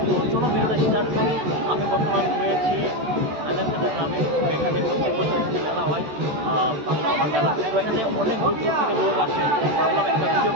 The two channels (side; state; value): left; late; 13 ms